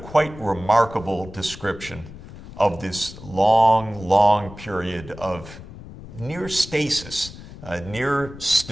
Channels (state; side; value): noise; left; rumble, 15 dB below the sound